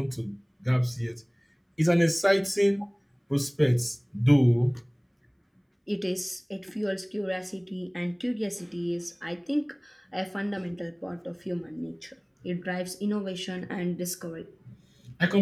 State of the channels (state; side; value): identical; both; correlation 1.00